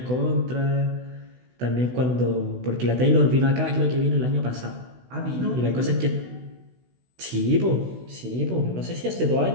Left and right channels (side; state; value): left; late; 16 ms